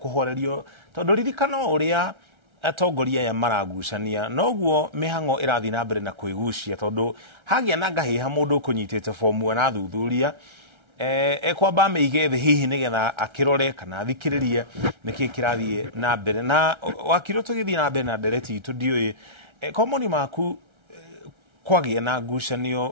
tondu ririkano uria atongoria ya maragucania noguo mihango irathi na mbere na kwigucia tondu hagia na ngahiha mundu kunyitite form na thuthuria kwamba meige the hihi nigetha akirore kana thikiririe niki kirathie na mbere na wakiro tugithie na mbere na ndereti itu ndioi komoni maku kwagia na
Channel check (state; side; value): late; left; 1.3 ms